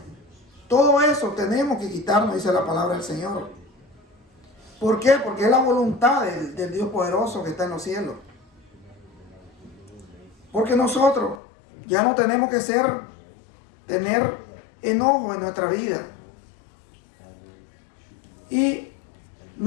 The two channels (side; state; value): right; drops out; at 11.4 s